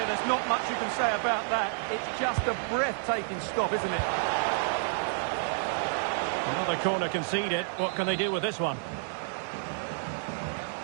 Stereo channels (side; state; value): left; silent; digital silence